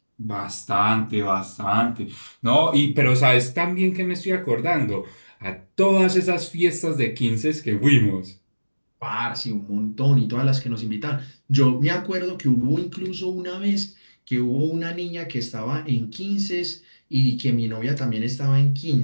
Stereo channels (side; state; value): both; inverted; correlation -1.00